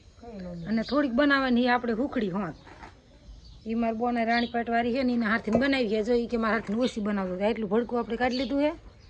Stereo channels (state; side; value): identical; both; correlation 1.00